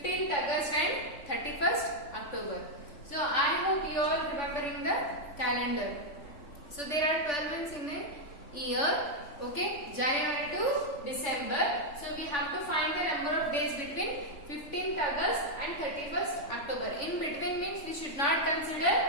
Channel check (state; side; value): late; right; 3.5 ms